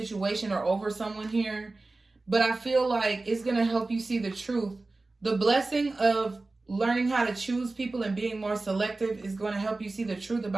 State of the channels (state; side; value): quieter; left; 3.3 dB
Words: or over someone here, but I feel like it's going to help you see the truth. The blessing of learning how to choose people and being more selective is going to help you see the truth